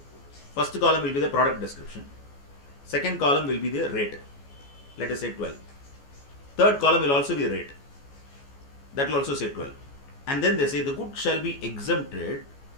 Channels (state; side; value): late; right; 14 ms